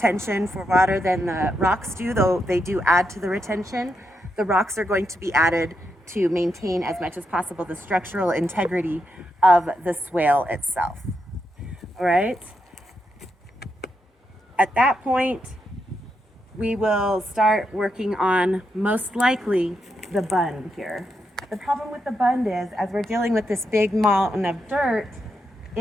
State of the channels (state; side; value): normal; both; correlation 0.82